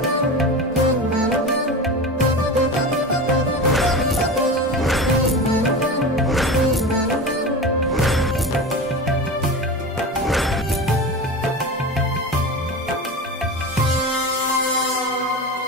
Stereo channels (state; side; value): normal; both; correlation 0.28